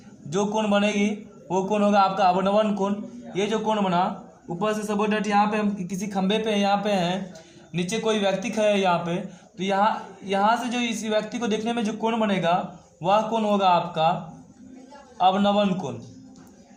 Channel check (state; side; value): identical; both; correlation 1.00